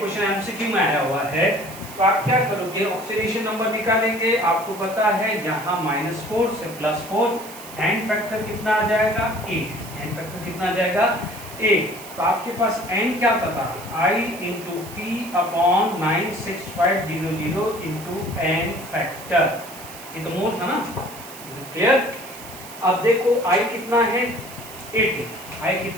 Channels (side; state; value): right; noise; hiss, 15 dB below the sound